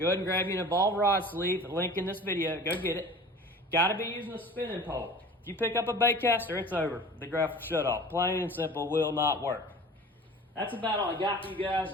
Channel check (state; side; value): normal; both; correlation 0.41